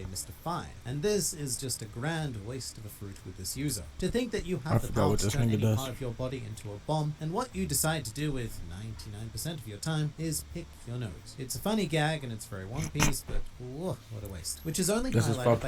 Mr. 5. And this is just a grand waste of a fruit with this user. To think that you have the power to turn any part of your body into a bomb, and what you decide to do with 99% of your time is pick your nose. It's a funny gag and it's very One Piece, but whoa, what a waste. Which is only This is highlighted by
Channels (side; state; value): both; identical; correlation 1.00